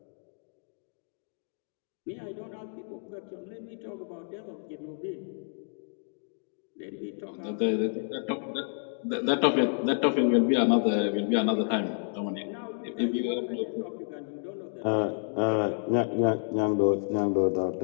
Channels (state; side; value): silent; right; digital silence